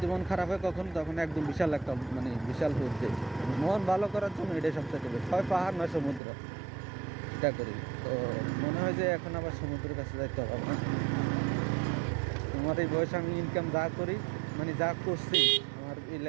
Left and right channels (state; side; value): drops out; left; at 6.2 s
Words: মন খারাপ হয় কখন, তখন একদম বিশাল একটা বিশাল রূপ দিই। মন ভালো করার জন্য এটাই সবথেকে বেশি। হয় পাহাড় নয় সমুদ্র, এটা করি। তো মনে হয় যে এখন আবার সমুদ্রের কাছে যাইতে হবে না। আমার এই বয়সে আমি ইনকাম যা করি, যা করছি আমার এই